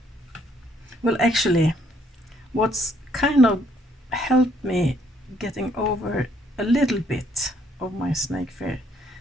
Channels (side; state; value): both; normal; correlation 0.67